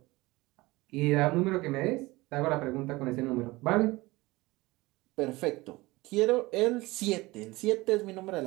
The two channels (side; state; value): left; quieter; 20.9 dB